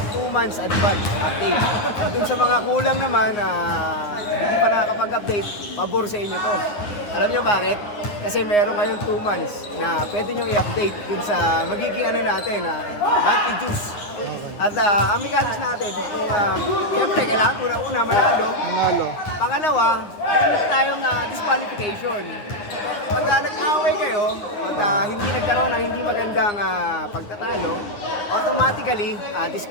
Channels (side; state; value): right; late; 9.7 ms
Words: 2 months advance update. At dun sa mga kulang naman, hindi pa nakakapag-update, pabor sa inyo to. Alam nyo bakit? Kasi meron ngayon 2 months na pwede nyo i-update dun sa magiging natin, monthly juice. At ang mechanics natin, kung siyempre kailangan una-una manalo. Pangalawa, meron tayong disqualification. Pag nag-away kayo, at hindi nagkaroon ng hindi magandang pagtatalo, automatically